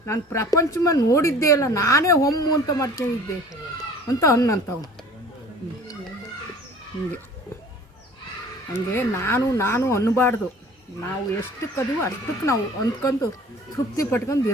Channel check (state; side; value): normal; both; correlation 0.47